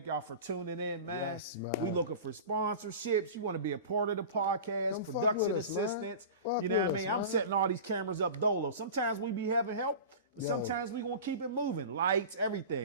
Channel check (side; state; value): both; inverted; correlation -0.33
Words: y'all for tuning in, man. Yes, man. We looking for sponsorships. You want to be a part of the podcast, Come fuck production with us, man. assistance. Fuck You know what I with mean? us, I'm man. setting all these cameras up dolo. Sometimes we be having help, but sometimes we gonna keep it moving. Lights,